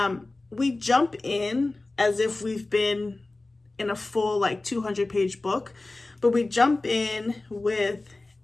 We jump in as if we've been in a full like 200-page book, but we jump in with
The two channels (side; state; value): right; quieter; 3.1 dB